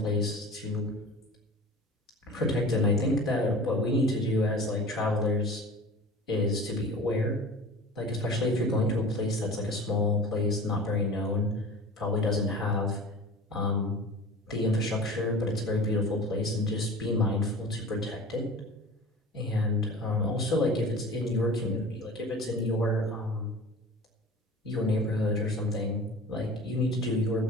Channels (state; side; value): normal; both; correlation 0.38